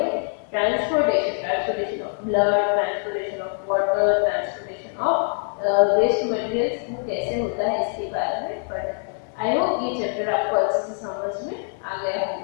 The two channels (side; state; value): right; silent; 56 dB below the other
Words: transportation of blood, transportation of water, transportation of waste materials वो कैसे होता है इसके बारे में पढ़ा. आई होप ये चैप्टर आपको अच्छे से समझ में आ गया